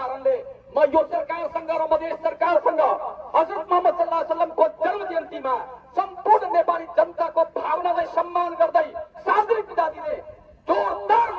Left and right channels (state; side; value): identical; both; correlation 1.00